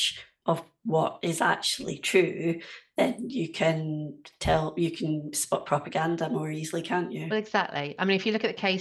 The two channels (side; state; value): both; identical; correlation 1.00